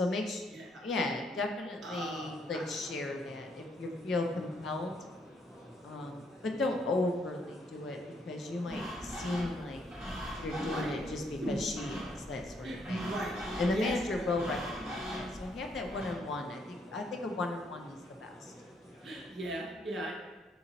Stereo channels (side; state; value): both; normal; correlation 0.72